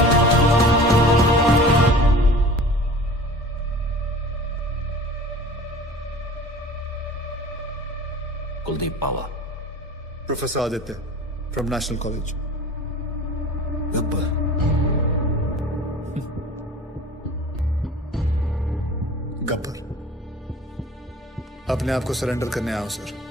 Kuldeep Pawa. Professor Aditya from national college. Gabbar Gabbar अपने आप को सरेंडर करने आया हूं सर।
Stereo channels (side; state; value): both; normal; correlation 0.42